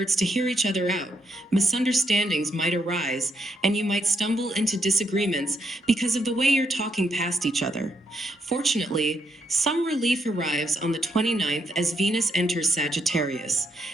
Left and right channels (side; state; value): both; normal; correlation 0.78